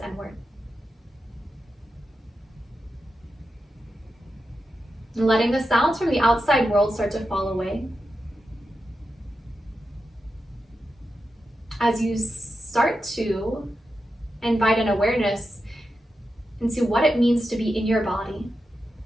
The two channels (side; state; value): both; normal; correlation 0.89